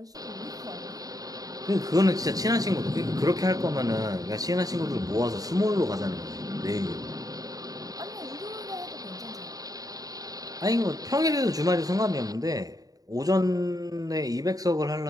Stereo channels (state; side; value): late; left; 0.18 ms